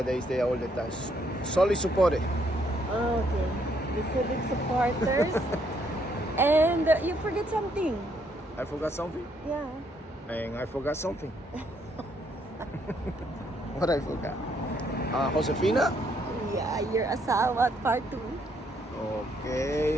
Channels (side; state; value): both; normal; correlation 0.71